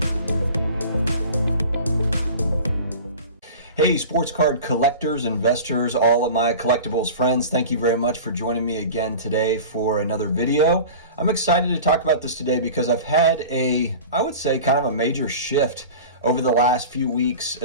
Hey, sports card collectors, investors, all of my collectibles friends, thank you very much for joining me again today for another video. I'm excited to talk about this today because I've had I would say kind of a major shift over the last few weeks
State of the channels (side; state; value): both; inverted; correlation -0.36